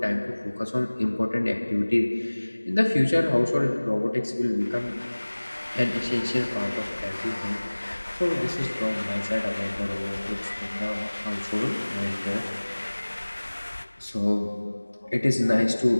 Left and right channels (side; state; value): both; inverted; correlation -1.00